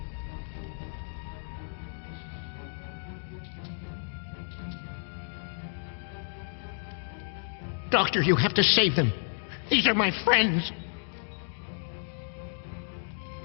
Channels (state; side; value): silent; right; digital silence